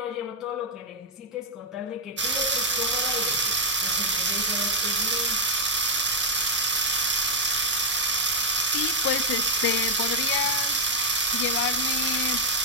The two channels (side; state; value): both; normal; correlation -0.03